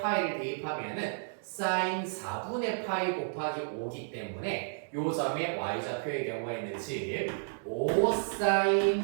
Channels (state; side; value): silent; left; digital silence